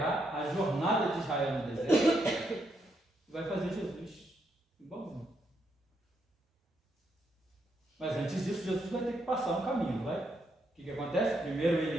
a jornada de Israel no deserto e vai fazer Jesus igualzinho. Mas antes disso, Jesus vai ter que passar um caminho, vai? O que acontece? Primeiro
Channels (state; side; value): normal; both; correlation 0.78